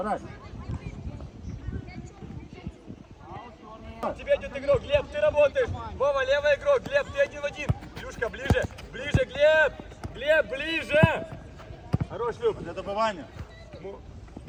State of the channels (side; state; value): both; identical; correlation 1.00